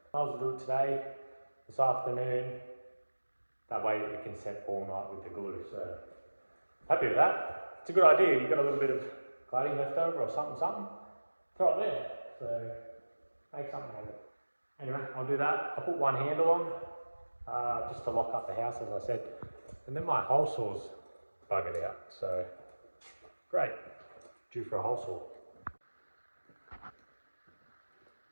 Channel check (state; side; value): inverted; both; correlation -1.00